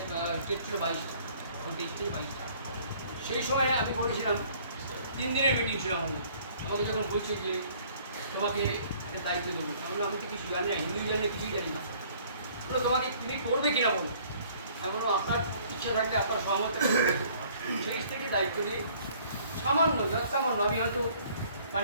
স্টেট ছিল 22টা তখন 23 থেকে 22টা সেই সময় আমি বলেছিলাম 3 দিনের মিটিং ছিল আমাকে যখন বলছে যে তোমাকে একটা দায়িত্ব দেবো আমি তো কিছু জানি না হিন্দিও জানি না কিছুই জানি না বলো তোমাকে তুমি করবে কিনা বলো আমি বলবো আপনার ইচ্ছা থাকলে আপনার সহমত সেই থেকে দায়িত্ব নিয়ে সামান্য যৎসামান্য আমি হয়তো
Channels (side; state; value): both; inverted; correlation -0.57